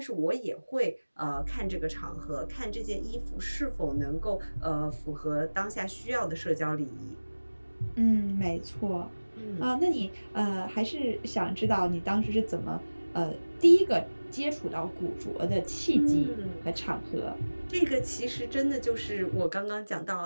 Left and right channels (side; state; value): both; inverted; correlation -1.00